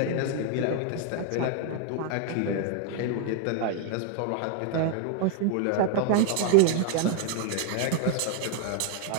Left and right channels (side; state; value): both; different; correlation 0.00